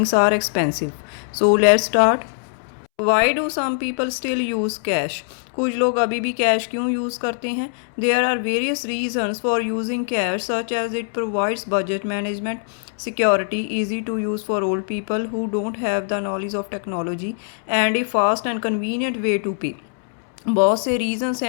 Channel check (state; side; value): silent; right; 64 dB below the other